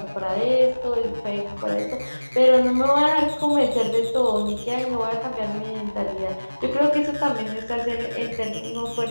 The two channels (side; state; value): both; inverted; correlation -1.00